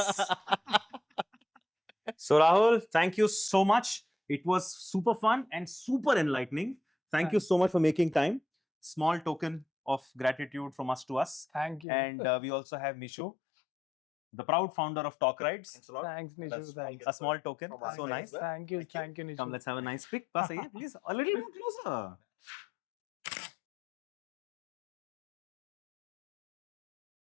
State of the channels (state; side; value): drops out; right; at 11.9 s